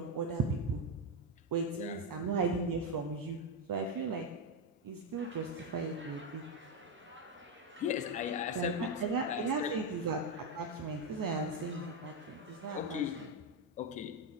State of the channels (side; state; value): both; normal; correlation 0.07